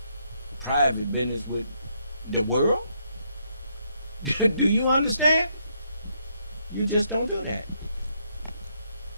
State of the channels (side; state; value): both; inverted; correlation -0.74